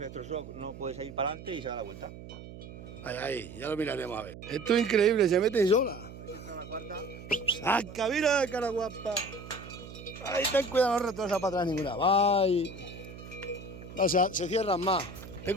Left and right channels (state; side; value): noise; right; hum, 14 dB below the sound